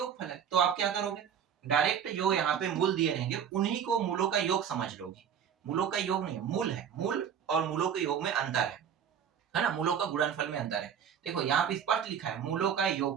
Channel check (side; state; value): left; quieter; 8.3 dB